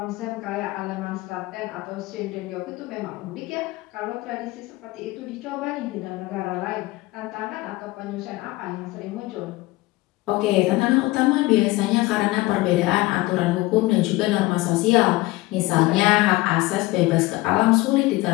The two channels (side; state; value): right; quieter; 20.0 dB